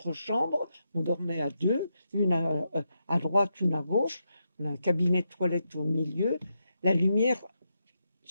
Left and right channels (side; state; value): both; inverted; correlation -0.84